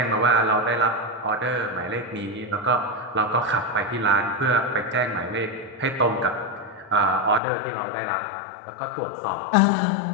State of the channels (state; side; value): drops out; right; at 7.4 s